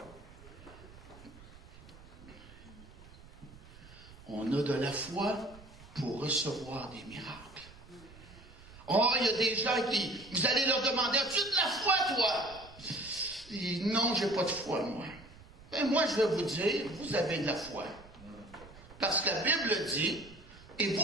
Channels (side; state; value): right; noise; rumble, 20 dB below the sound